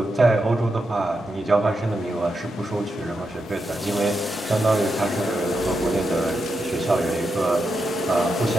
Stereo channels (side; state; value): both; normal; correlation 0.86